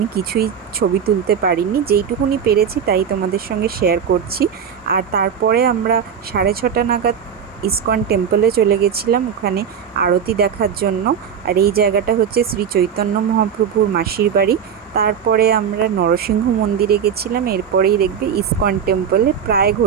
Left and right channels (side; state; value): left; quieter; 7.7 dB